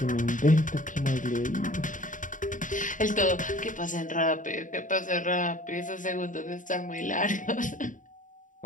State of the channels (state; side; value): late; right; 0.38 ms